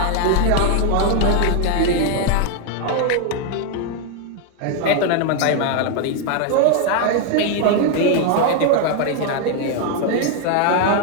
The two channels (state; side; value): different; both; correlation 0.00